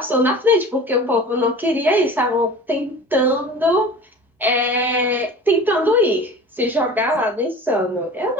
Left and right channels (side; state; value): both; normal; correlation 0.39